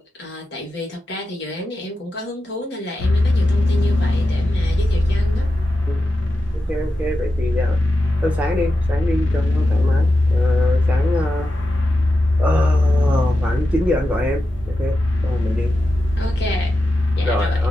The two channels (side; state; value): both; normal; correlation 0.91